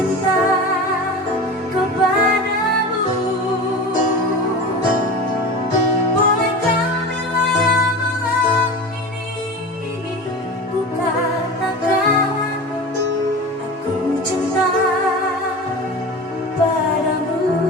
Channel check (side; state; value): both; normal; correlation 0.31